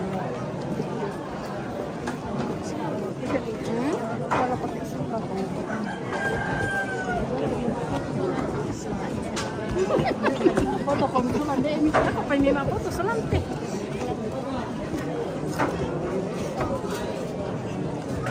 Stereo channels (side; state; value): both; identical; correlation 1.00